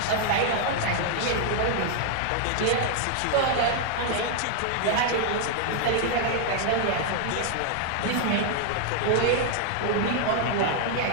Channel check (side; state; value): both; different; correlation 0.00